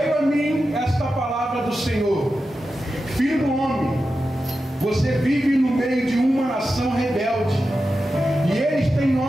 a mim esta palavra do Senhor: filho do homem, você vive no meio de uma nação rebelde, e eles têm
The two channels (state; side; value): normal; both; correlation 0.91